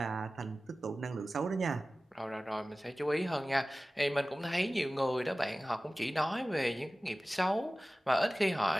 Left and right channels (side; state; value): both; normal; correlation 0.97